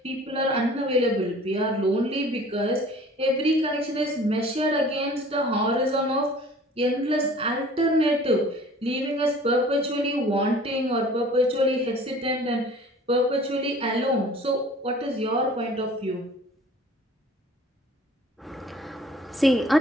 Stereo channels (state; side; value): normal; both; correlation 0.48